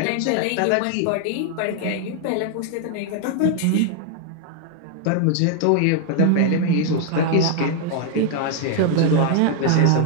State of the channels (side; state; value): both; different; correlation 0.00